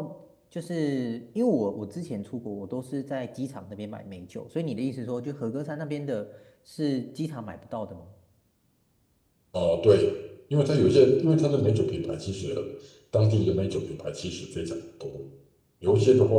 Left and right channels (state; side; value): identical; both; correlation 1.00